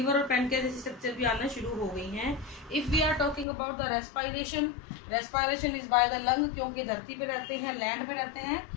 और पैनक्रियास जैसी स्ट्रक्चर भी आना शुरू हो गई हैं। If we are talking about the respiration, respiration is by the lung, क्योंकि धरती पे रहते हैं, लैंड पे रहते हैं,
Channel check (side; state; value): right; drops out; at 3.5 s